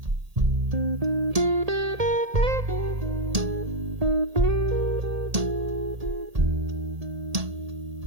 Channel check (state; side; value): late; left; 1.8 ms